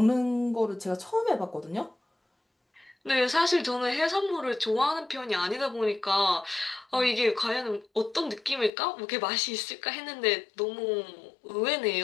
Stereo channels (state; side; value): drops out; right; at 8.7 s